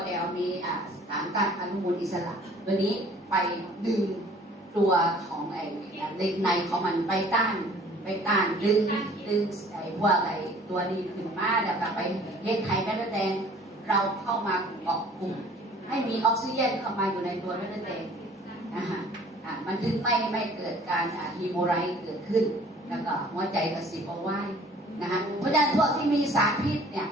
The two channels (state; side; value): normal; both; correlation 0.52